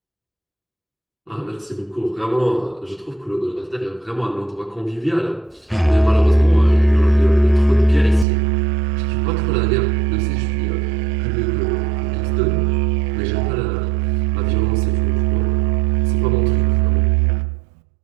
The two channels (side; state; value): left; drops out; at 8.2 s